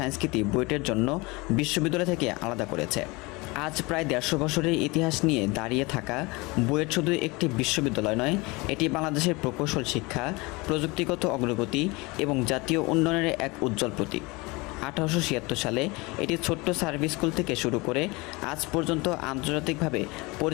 বুয়েটের জন্য বিশ্ববিদ্যালয় থেকে আলাদা করেছে। আজ প্রায় 150 বছরের ইতিহাস নিয়ে দাঁড়িয়ে থাকা বুয়েট শুধু একটি বিশ্ববিদ্যালয় নয়, এটি বাংলাদেশের প্রকৌশল শিক্ষা, প্রযুক্তিগত অগ্রগতি এবং জাতীয় উন্নয়নের এক উজ্জ্বল প্রতীক। 1876 সালে এটি ছোট্ট সার্ভিস স্কুল থেকে শুরু করে আজ পর্যন্ত আন্তর্জাতিকভাবে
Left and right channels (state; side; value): quieter; right; 24.9 dB